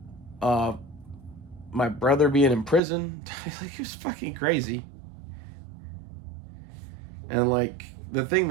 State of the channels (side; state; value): left; drops out; at 2.8 s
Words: my brother being in prison. Like, it was fucking crazy. And like, the thing